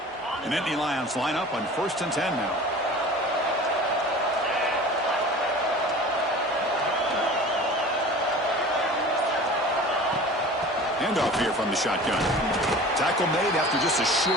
The Natty Lions line up on 1st and 10 now. Handoff here from the shotgun. Tackle made after just a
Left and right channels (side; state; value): both; normal; correlation 0.40